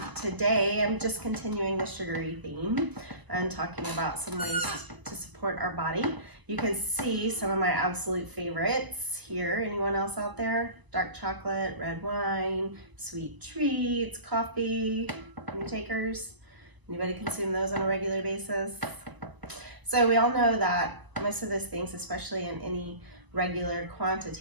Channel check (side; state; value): left; late; 1.0 ms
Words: Today I'm just continuing the sugary theme and talking about some ways to support our body. You can see some of my absolute favorites here. Anyone else out there? Dark chocolate, red wine, sweet treats, coffee. Any takers? Anybody consume those on a regular basis? So we all know that most of those things, especially in any regular